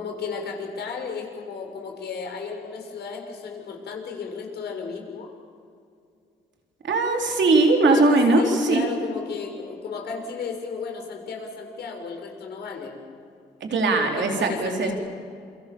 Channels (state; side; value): normal; both; correlation 0.48